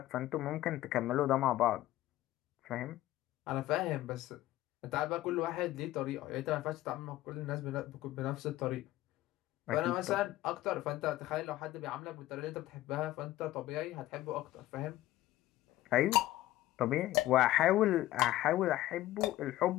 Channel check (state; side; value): quieter; right; 15.4 dB